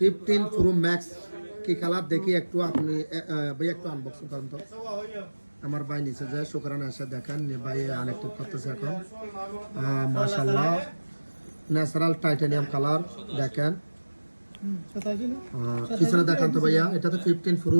প্রো ম্যাক্স কি কালার দেখি একটু আপনি ভাই একটু আনবক্সিং করেন তো। আমার ভাই নিচে যে শুকরানে এসে দেখেন ভাই আনএক্টিভ করতেছে এখন। মাশাআল্লাহ ন্যাচারাল টাইটানিয়াম কালার দেখেন। পিছনে দেখান তো ভাইয়া, এটা তো 15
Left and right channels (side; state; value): both; inverted; correlation -1.00